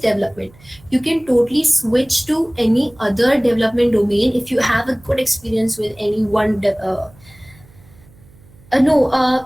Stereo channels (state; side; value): noise; right; hum, 26 dB below the sound